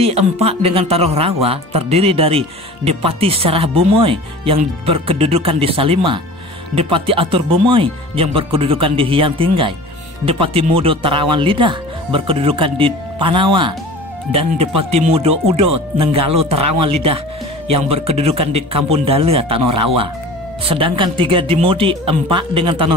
4 dengan Tanah Rawa terdiri dari Depati Serah Bumoy yang berkedudukan di Salima, Depati Atur Bumoy yang berkedudukan di Hyang Tinggai, Depati Mudo Terawan Lidah berkedudukan di Panawa, dan Depati Mudo Udo Nenggalo Terawan Lidah yang berkedudukan di Kampung Dalia Tanah Rawa. Sedangkan 3 di Mudik 4 dengan Tanah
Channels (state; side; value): normal; both; correlation 0.39